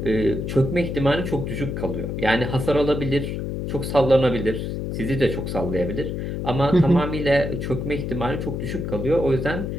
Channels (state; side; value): noise; left; hum, 4 dB below the sound